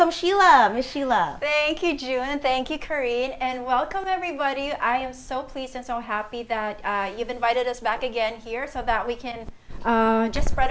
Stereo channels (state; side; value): identical; both; correlation 1.00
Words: Sheila, Miss Sheila. Thank you, June, and thank you, Karine, and welcome everybody. I am so pleased and so happy that you've invited us back again here so that we can just